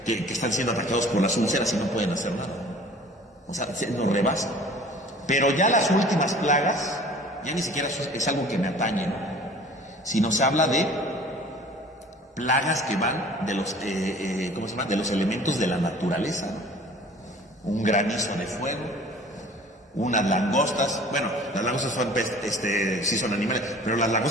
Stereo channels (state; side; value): normal; both; correlation 0.47